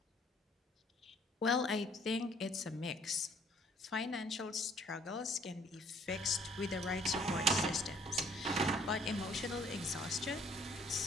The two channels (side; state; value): both; normal; correlation 0.60